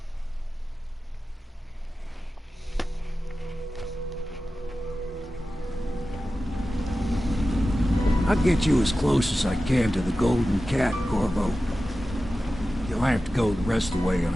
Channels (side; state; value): both; normal; correlation 0.94